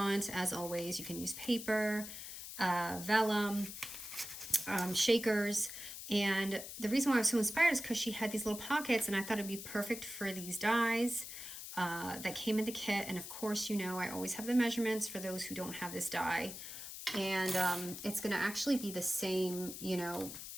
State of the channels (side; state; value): left; noise; hiss, 10 dB below the sound